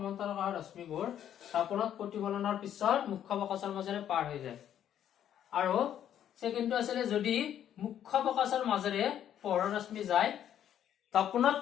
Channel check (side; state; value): right; quieter; 10.3 dB